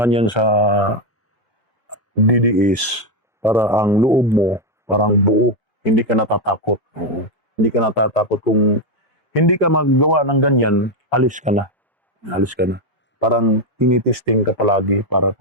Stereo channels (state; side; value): normal; both; correlation 0.06